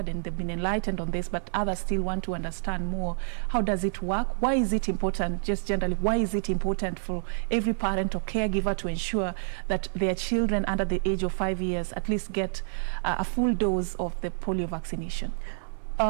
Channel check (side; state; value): left; silent; 59 dB below the other